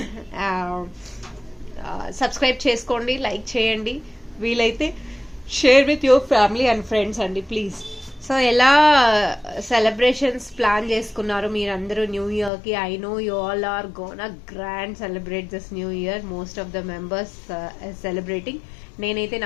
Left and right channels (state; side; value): drops out; right; at 12.5 s